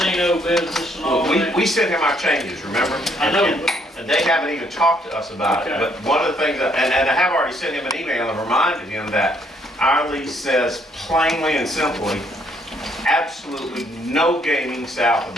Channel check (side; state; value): both; normal; correlation 0.68